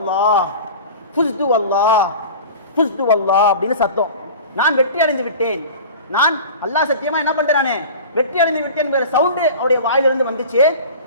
ஃபுஸ்து வல்லாஹ், ஃபுஸ்து வல்லாஹ் அப்படின்னு சத்தம். நான் வெற்றி அடைந்து விட்டேன், நான் அல்லாஹ் சத்தியமா என்ன பண்றானே வெற்றி அடைந்து விட்டேன் என்கிற சவுண்டு அவருடைய வாயிலிருந்து வந்துச்சு.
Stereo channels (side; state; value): both; inverted; correlation -0.37